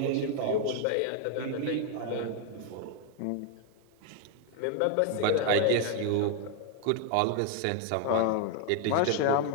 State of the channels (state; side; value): different; both; correlation 0.00